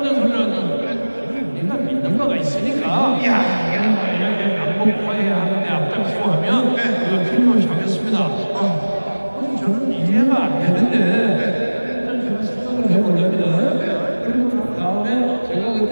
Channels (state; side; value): inverted; both; correlation -1.00